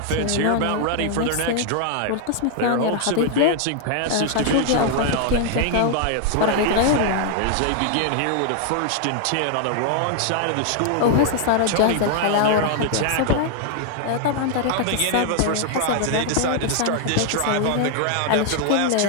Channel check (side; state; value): both; different; correlation 0.00